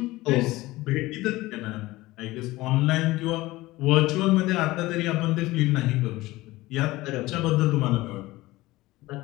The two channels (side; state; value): right; quieter; 18.9 dB